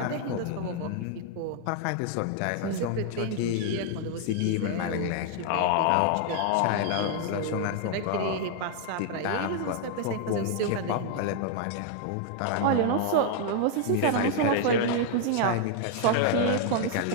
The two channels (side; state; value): both; different; correlation 0.00